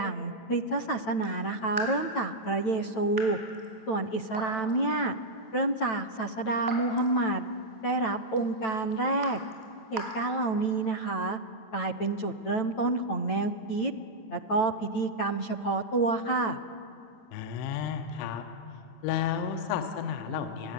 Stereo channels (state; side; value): late; right; 9.1 ms